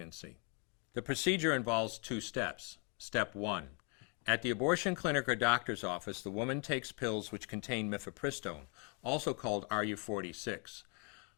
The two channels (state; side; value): quieter; right; 36.9 dB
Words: The procedure involves 2 steps. Step 1. At the abortion clinic or doctor's office, the woman takes pills which contain mifepristone, also called RU46.